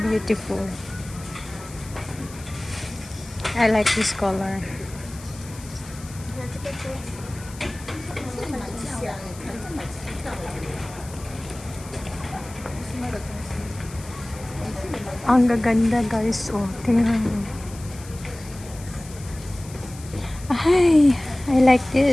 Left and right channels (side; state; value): left; noise; hiss, 18 dB below the sound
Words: I like this color. Ang gaganda guys. Oh, tingnan mo. Ay, I like